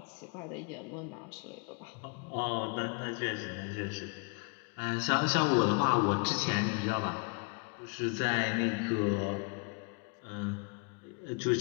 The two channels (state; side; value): quieter; right; 32.8 dB